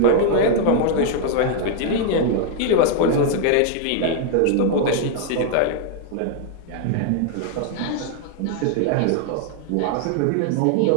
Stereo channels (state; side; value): different; both; correlation 0.00